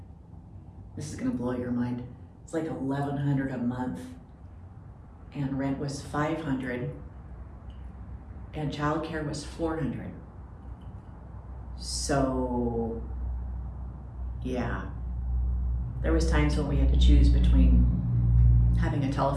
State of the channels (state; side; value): identical; both; correlation 1.00